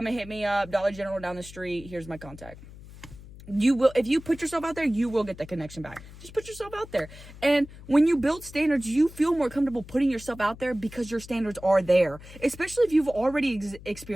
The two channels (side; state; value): left; noise; hum, 17 dB below the sound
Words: and hit me up, Dollar General down the street, here's my contact. You will, if you put yourself out there, you will get the connection back. Just put yourself out there. And when you build standards, you feel more comfortable putting yourself out there, because your standards are there. Especially if you've already